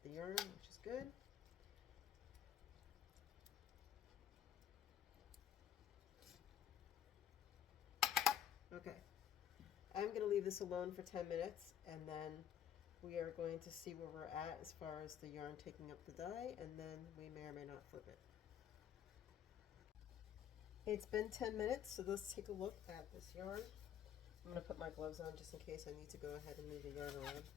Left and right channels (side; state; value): right; quieter; 9.7 dB